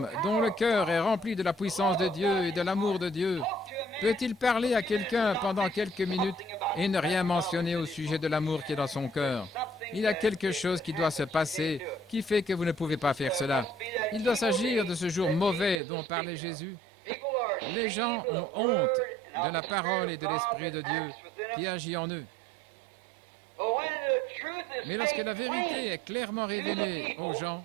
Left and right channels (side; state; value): left; drops out; at 15.8 s